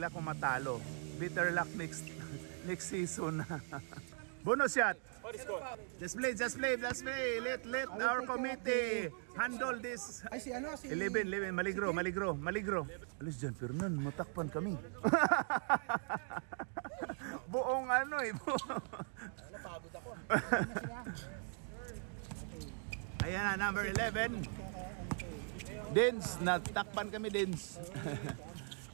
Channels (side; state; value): left; silent; 51 dB below the other